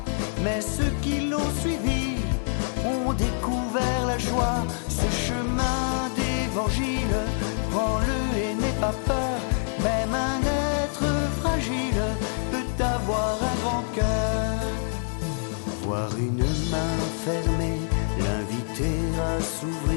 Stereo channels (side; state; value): right; silent; digital silence